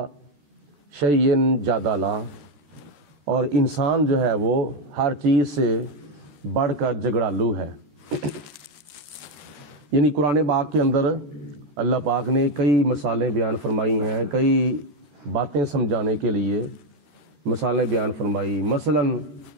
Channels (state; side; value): late; left; 13 ms